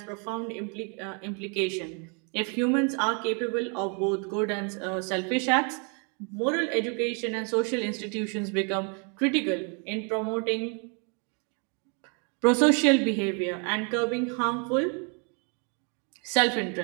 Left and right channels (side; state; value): left; quieter; 37.3 dB